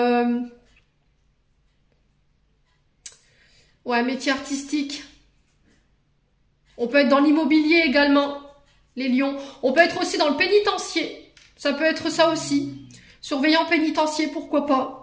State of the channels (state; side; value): identical; both; correlation 1.00